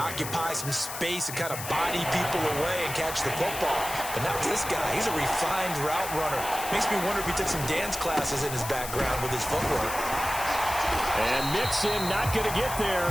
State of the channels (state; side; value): noise; left; hiss, 8 dB below the sound